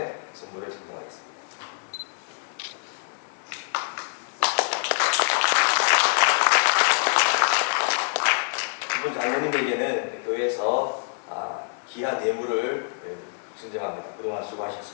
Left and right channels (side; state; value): right; silent; 61 dB below the other